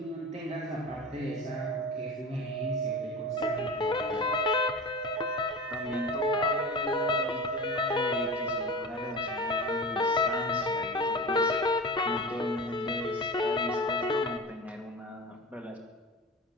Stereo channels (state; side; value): normal; both; correlation 0.31